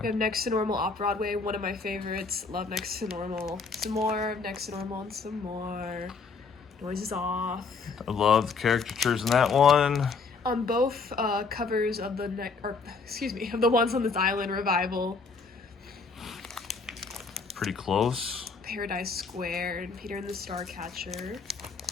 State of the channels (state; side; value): quieter; right; 4.7 dB